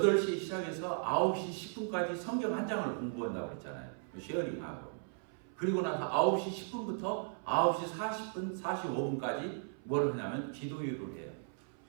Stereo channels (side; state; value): left; silent; 53 dB below the other